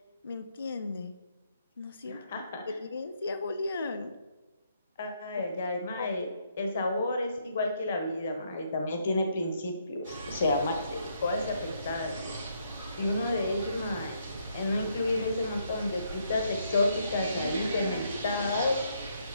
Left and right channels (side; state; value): both; inverted; correlation -0.73